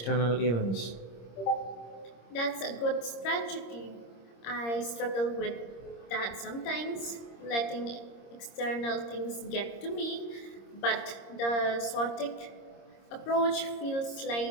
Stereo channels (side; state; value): right; late; 26 ms